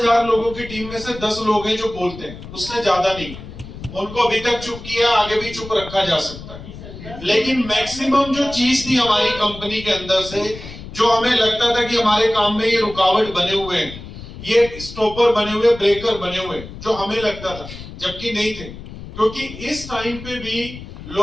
लोगों की टीम में से 10 लोग हैं जो बोलते हैं, उससे ज्यादा नहीं। उनको अभी तक चुप किया, आगे भी चुप रखा जा सकता है। लेकिन मैक्सिमम जो चीज थी हमारी कंपनी के अंदर से, जो हमें लगता था कि हमारे काम में ये रुकावट बने हुए हैं, ये स्टॉपर बने हुए, ब्रेकर बने हुए, जो हमें लगता था, जबकि नहीं थे। क्योंकि इस टाइम पे भी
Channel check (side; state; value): left; noise; rumble, 13 dB below the sound